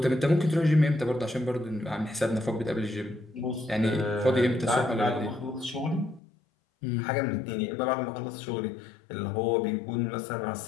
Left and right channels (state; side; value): drops out; right; at 6.2 s